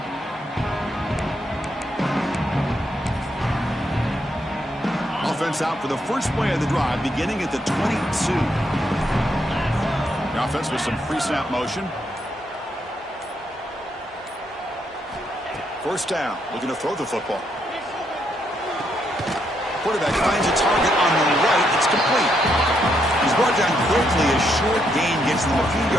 Offense out for the first play of the drive, beginning at the 22. The offense with some pre-snap motion. First down, looking to throw the football. Quarterback finds a target on the right. It's complete. He's brought down quickly. A short gain gets them a few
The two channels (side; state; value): both; normal; correlation 0.77